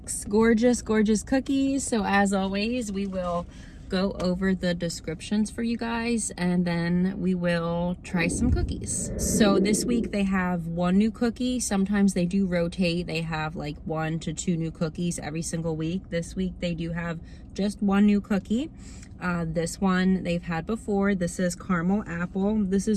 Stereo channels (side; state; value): both; identical; correlation 1.00